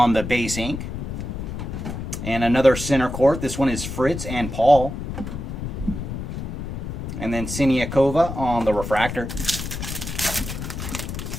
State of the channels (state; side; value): noise; left; rumble, 6 dB below the sound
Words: the base ink. And another center court. This one is Fritz and Paul. And then Siniakova on the refractor.